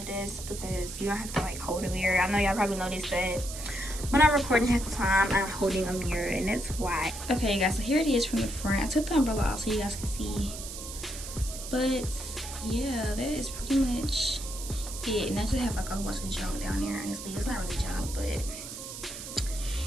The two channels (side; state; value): right; noise; hiss, 10 dB below the sound